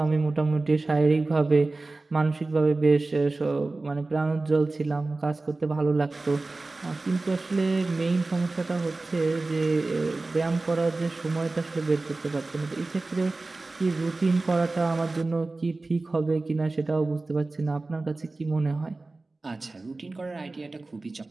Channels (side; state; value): left; quieter; 3.3 dB